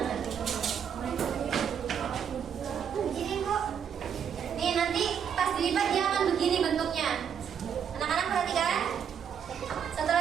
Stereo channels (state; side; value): quieter; left; 7.9 dB